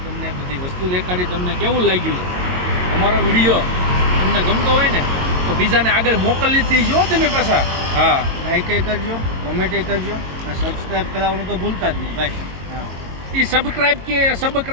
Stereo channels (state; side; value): late; left; 22 ms